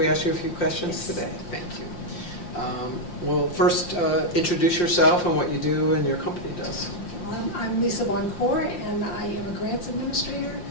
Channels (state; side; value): late; right; 5.7 ms